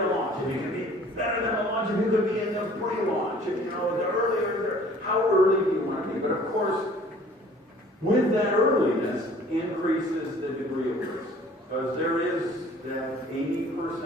launch. If you can be better than the launch, if you could be in the pre-launch, the earlier, how early do you want to be? But of course, with that earliness increases the degree of risk. Because there is that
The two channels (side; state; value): both; normal; correlation 0.52